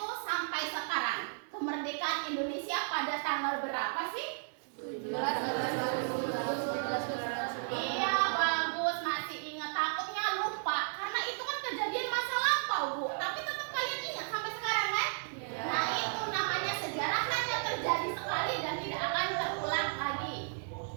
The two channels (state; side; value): silent; left; digital silence